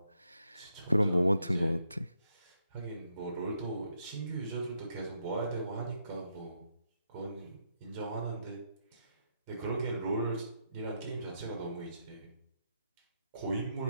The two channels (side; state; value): both; inverted; correlation -0.79